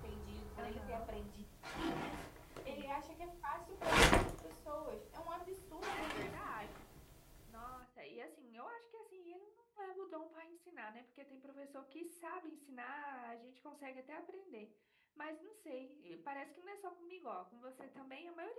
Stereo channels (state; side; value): identical; both; correlation 1.00